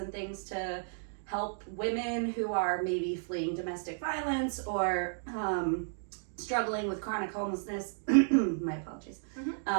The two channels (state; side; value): silent; left; digital silence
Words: things to help women who are maybe fleeing domestic violence or struggling with chronic homelessness. My apologies.